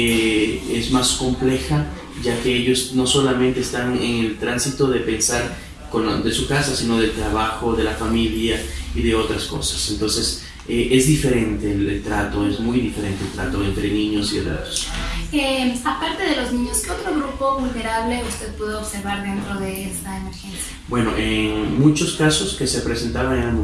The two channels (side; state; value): both; identical; correlation 1.00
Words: más compleja, ya que ellos no solamente están en el tránsito de pensar de su casa, sino del trabajo, de la familia y de otras cosas. Entonces, es diferente el trato, es muy diferente el trato entre niños y adultos. Aparte de los niños, ¿qué otro grupo vulnerable usted pudo observar dentro de esta emergencia? Bueno, en muchos casos que se presentaban eran